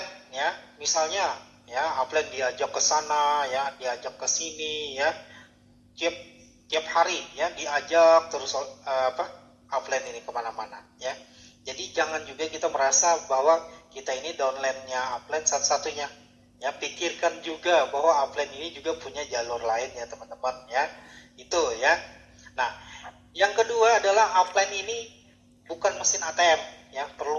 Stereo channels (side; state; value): both; identical; correlation 1.00